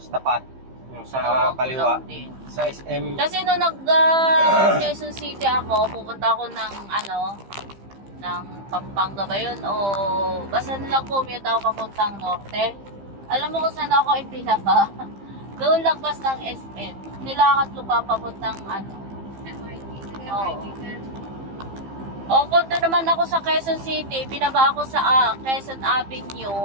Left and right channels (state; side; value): late; left; 15 ms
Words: tapat. Yung sa kaliwa. Sa SM. Kasi nung Quezon City ako, pupunta ako ng Pampanga ba yun? O basta nilang commute ako papuntang norte. Alam mo kung saan ako ipinaba? Doon lagpas ng SM. Nilakad ko pa papuntang O kung doon naman ako sa Quezon City, binaba ako sa Quezon